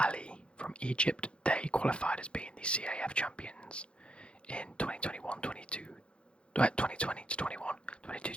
from Egypt, they qualified as being the CAF champions in 2021, 2020 to 21, 22,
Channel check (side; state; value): right; late; 0.057 ms